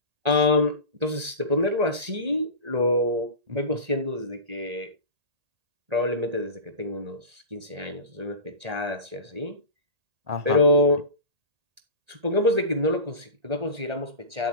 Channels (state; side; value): late; left; 1.8 ms